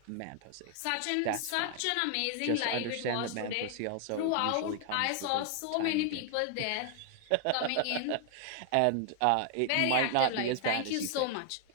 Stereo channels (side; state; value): both; different; correlation 0.00